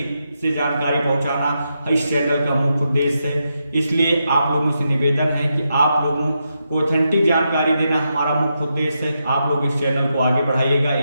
से जानकारी पहुंचाना इस चैनल का मुख्य उद्देश्य है। इसलिए आप लोगों से निवेदन है कि आप लोगों को ऑथेंटिक जानकारी देना हमारा मुख्य उद्देश्य है। आप लोग इस चैनल को आगे बढ़ाइएगा,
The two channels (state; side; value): inverted; both; correlation -0.84